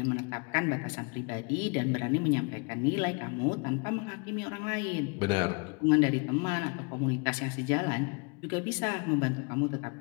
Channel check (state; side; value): quieter; right; 32.7 dB